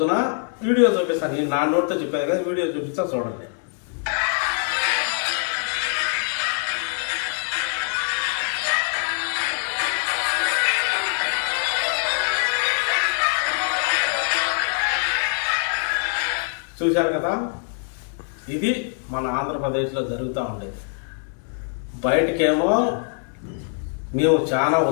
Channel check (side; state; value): right; silent; 57 dB below the other